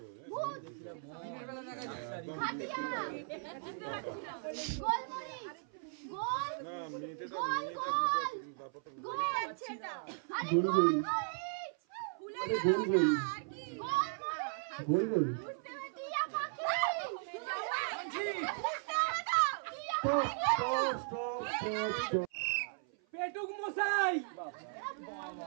খাটিয়া বুঝতে পারছি না গোল মরিচ গোল গোল গোল গোল আছে না আরে গোল মরিচ ভুলে গেল ওটা আর কি গোল মরিচ গোল গোল বুঝতে পারছি টিয়া পাখি বুঝতে পারছো টিয়া স্টপ পেটুক মশাই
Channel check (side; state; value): left; silent; 53 dB below the other